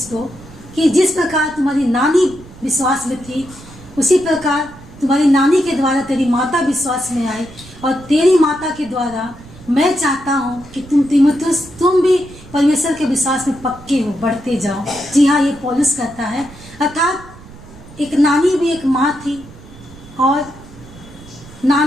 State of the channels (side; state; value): right; noise; rumble, 19 dB below the sound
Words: को कि जिस प्रकार तुम्हारी नानी विश्वास में थी, उसी प्रकार तुम्हारी नानी के द्वारा तेरी माता विश्वास में आई और तेरी माता के द्वारा मैं चाहता हूँ कि तुम तीमुथियुस, तुम भी परमेश्वर के विश्वास में पक्के हो, बढ़ते जाओ। जी हाँ, ये पौलुस कहता है। अर्थात एक नानी भी एक माँ थी और